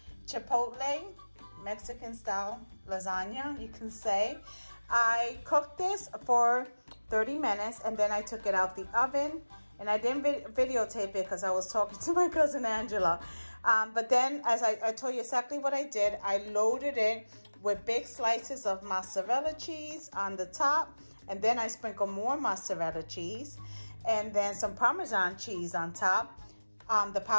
chipotle Mexican style lasagna, you can say. I cooked this for 30 minutes and then I took it out the oven, and I didn't videotape it because I was talking to my cousin Angela. But then, as I told you exactly what I did, I loaded it with big slices of mozzarella cheese on the top, and then I sprinkled more mozzarella cheese and then some Parmesan cheese on top, the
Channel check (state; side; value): inverted; both; correlation -1.00